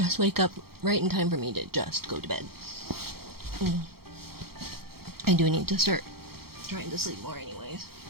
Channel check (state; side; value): late; left; 0.95 ms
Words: wake up right in time for me to just go to bed. I do need to start trying to sleep more anyways.